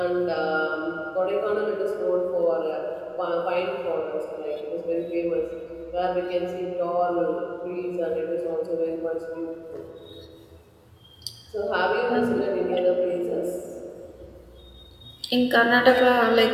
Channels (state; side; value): identical; both; correlation 1.00